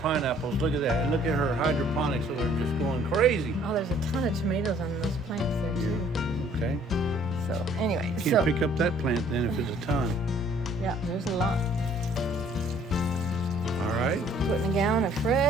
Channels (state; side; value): normal; both; correlation 0.58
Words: pineapples. Look at that. And look at her hydroponics, so they're just going crazy. Oh, there's a ton of tomatoes on those plants there, too. Okay. So, anyway. Can't pick up that plant then if it's a ton. Yeah, there's a lot. All right. Putting a gallon of